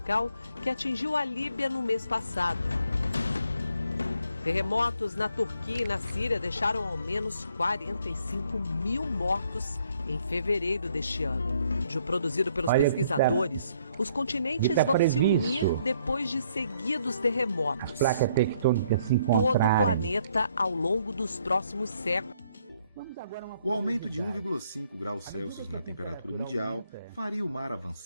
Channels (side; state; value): both; inverted; correlation -0.69